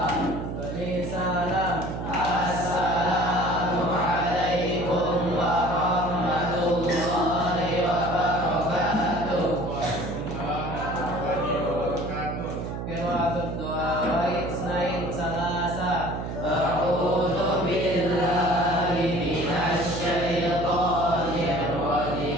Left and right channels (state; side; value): noise; right; hum, 5 dB below the sound